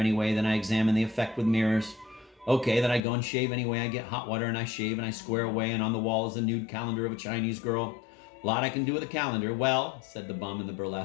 Then I examine the effect with mirrors. Okay, then I go and shave anyway. I get hot water and I shave and I square away, and on the wall is a nude calendar of a Chinese girl. A lot I can do with a calendar. Well, said the bum in the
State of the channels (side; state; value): right; drops out; at 3.0 s